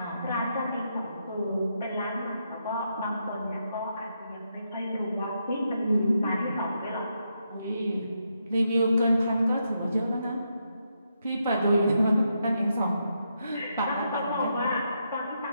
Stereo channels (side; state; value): both; inverted; correlation -0.81